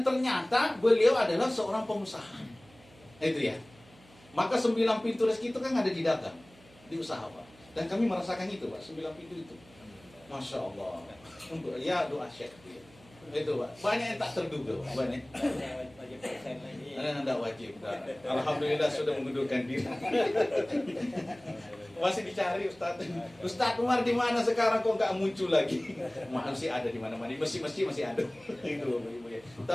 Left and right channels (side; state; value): right; noise; hum, 25 dB below the sound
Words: ternyata beliau adalah seorang pengusaha. Itu ya. Maka 9 pintu rezeki itu kan ada di dagang, di usaha Pak. Dan kami merasakan itu Pak, 9 pintu itu. Masya Allah. Ya doa syekh. Itu Pak. Banyak yang tak terduga Pak. Banyak. Wajib persen lagi. Tidak wajib. Alhamdulillah sudah mengundurkan diri. Masih dicari Ustaz. Ustaz Umar di mana sekarang kok nggak muncul lagi? Masih ada di mana-mana. Masih ada. Itu.